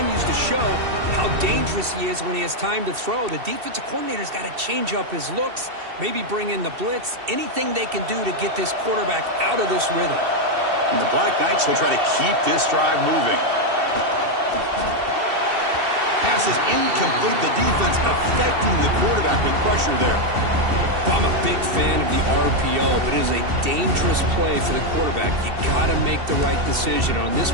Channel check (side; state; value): left; late; 2.7 ms